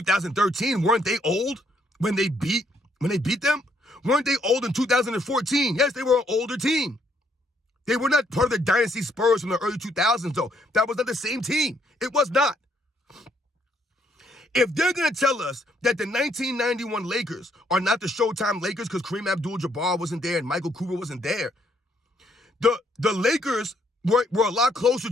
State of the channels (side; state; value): both; normal; correlation 0.71